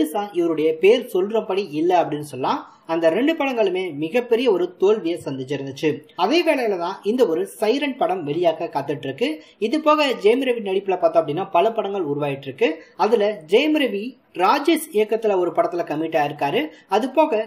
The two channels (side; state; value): both; identical; correlation 1.00